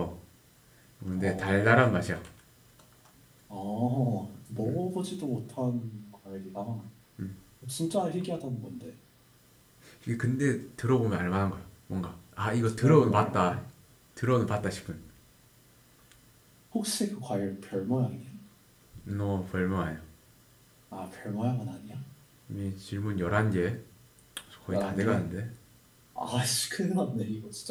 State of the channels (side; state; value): both; identical; correlation 1.00